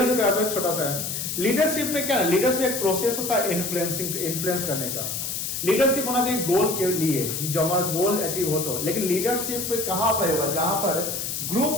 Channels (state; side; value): noise; left; hiss, 3 dB below the sound